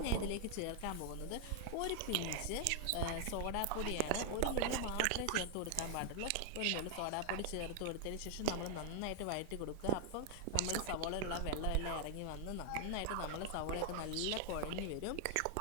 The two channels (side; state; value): both; different; correlation 0.00